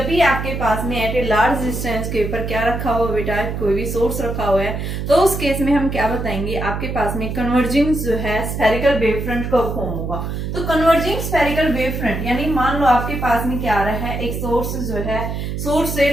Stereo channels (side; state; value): right; noise; hum, 4 dB below the sound